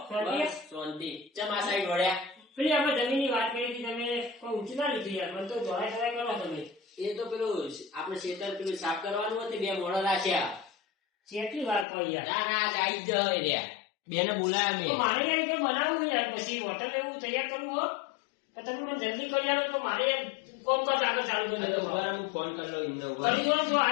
પેલી આપણે જમીનની વાત કરી હતી તમે કોઈ ઊંચી ના લીધી યાર મને તો જોડાય કરો તમે એ તો પેલું આપણે ખેતર પેલું સાફ કરવાનું હતું બે મોડો રાખ્યા કેટલી વાર પડી યાર ના ના આજ આવી જ રહ્યા બેને બોલાયા તો મેં મારે યાર રીતે બનાવવું યાર પછી હોટલ એવું તૈયાર કરવું હો તો તમે મને જલ્દી કરી આલો તો મારે કોમ કાજ આગળ ચાલુ કરી દો હું ફોન કરી લઉં એમને કરી દો જો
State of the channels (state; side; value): drops out; right; at 11.9 s